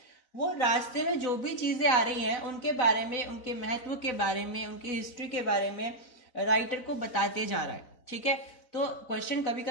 वो रास्ते में जो भी चीजें आ रही हैं उनके बारे में, उनके महत्व के बारे में, उनकी हिस्ट्री के बारे में राइटर को बताते जा रहा है, ठीक है। तो क्वेश्चन कभी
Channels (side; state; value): right; late; 4.0 ms